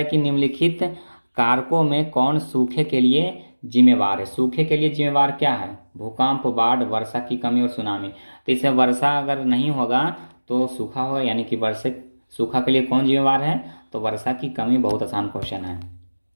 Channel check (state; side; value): inverted; both; correlation -1.00